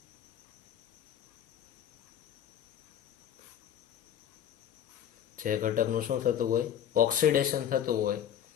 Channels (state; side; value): quieter; right; 9.8 dB